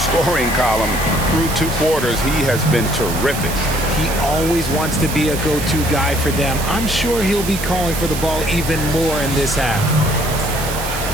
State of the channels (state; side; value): noise; right; hiss, 8 dB below the sound